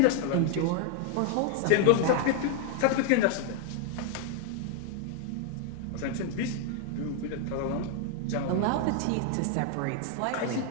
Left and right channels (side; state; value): both; different; correlation 0.00